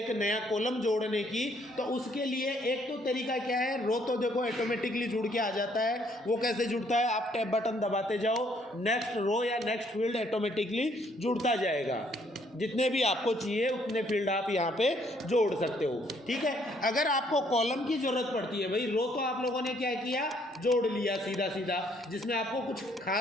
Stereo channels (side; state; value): both; normal; correlation 0.66